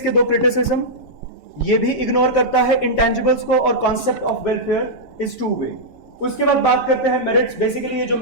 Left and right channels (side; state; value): right; late; 7.0 ms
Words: 2 क्रिटिसिज्म। ये भी इग्नोर करता है इंटेंजिबल्स को और concept of welfare is two वे। उसके बाद बात करते हैं मेरिट्स। बेसिकली ये जो